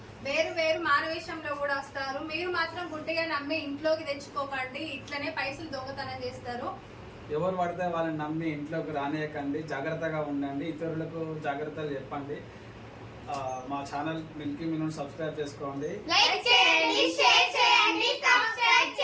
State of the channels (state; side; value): identical; both; correlation 1.00